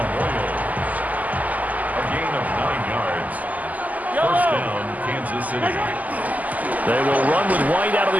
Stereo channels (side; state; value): left; late; 0.078 ms